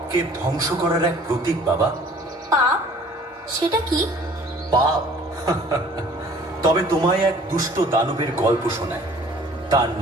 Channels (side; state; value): both; normal; correlation 0.52